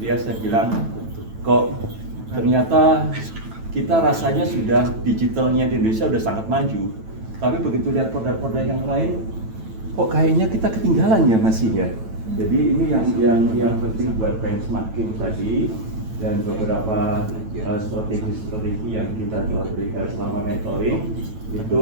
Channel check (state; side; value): late; left; 9.1 ms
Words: ya, saya bilang kok ternyata kita rasanya sudah digitalnya di Indonesia sudah sangat maju, tapi begitu lihat produk-produk yang lain kok kayaknya kita ketinggalan ya masih ya. Jadi ini yang penting buat benchmarking tadi dan beberapa strategi yang kita telah berikan selama mentoring itu